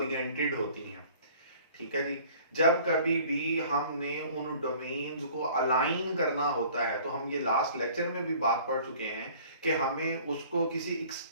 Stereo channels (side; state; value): both; inverted; correlation -0.50